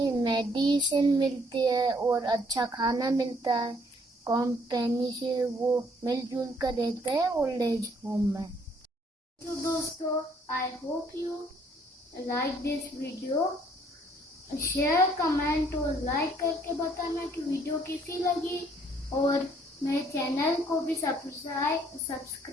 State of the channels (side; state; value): both; normal; correlation 0.64